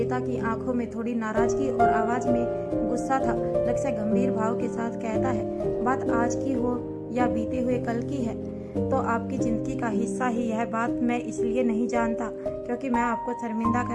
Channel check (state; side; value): identical; both; correlation 1.00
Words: की आंखों में थोड़ी नाराजगी और आवाज में गुस्सा था। लक्ष्य गंभीर भाव के साथ कहता है, बात आज की हो या बीते हुए कल की है तो आपकी जिंदगी का हिस्सा ही यह बात मैं इसलिए नहीं जानता क्योंकि मैं आपको शर्मिंदा